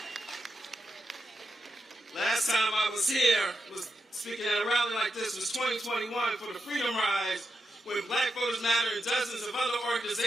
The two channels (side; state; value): both; normal; correlation 0.86